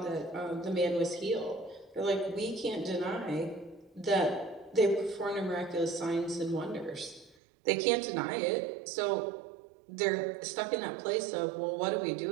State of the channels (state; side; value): drops out; left; at 7.4 s